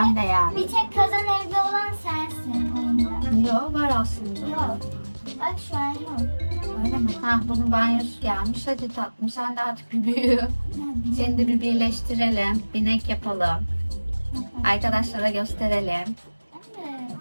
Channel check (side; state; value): both; inverted; correlation -1.00